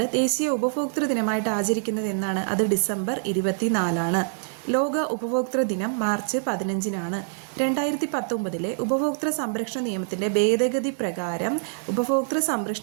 ദേശീയ ഉപഭോക്തൃ ദിനമായിട്ട് ആചരിക്കുന്നത് എന്നാണ്? അത് ഡിസംബർ 24-ആണ്. ലോക ഉപഭോക്തൃ ദിനം മാർച്ച് 15-നാണ്. 2019 ഉപഭോക്തൃ സംരക്ഷണ നിയമത്തിൻ്റെ ഭേദഗതി പ്രകാരം ഉപഭോക്തൃ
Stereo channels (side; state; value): left; silent; 62 dB below the other